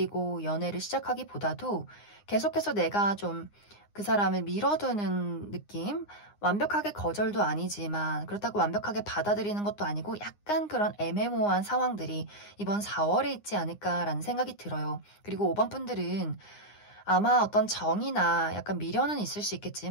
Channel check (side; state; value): right; late; 9.7 ms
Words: 연애를 시작하기보다도 계속해서 내가 좀 그 사람을 밀어두는 느낌? 완벽하게 거절도 아니지만 그렇다고 완벽하게 받아들이는 것도 아니고 약간 그런 애매모호한 상황들이 이번 4월에 있지 않을까라는 생각이 들어요. 그리고 5번 분들은 아마 어떤 정이나 약간 미련은 있을 수